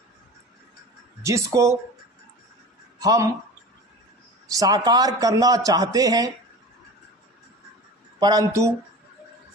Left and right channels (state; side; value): normal; both; correlation 0.35